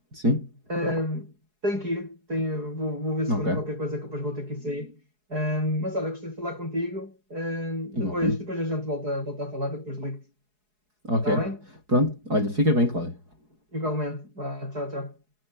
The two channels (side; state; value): left; late; 4.7 ms